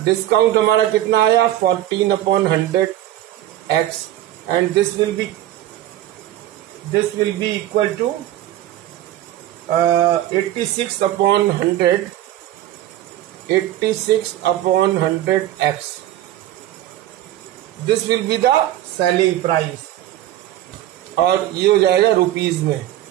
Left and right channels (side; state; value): left; quieter; 13.4 dB